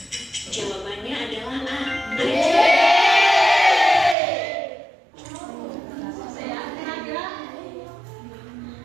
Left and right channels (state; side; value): drops out; left; at 4.2 s